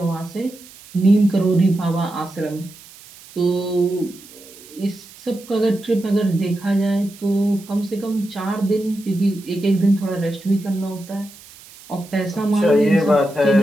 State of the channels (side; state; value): right; noise; hiss, 21 dB below the sound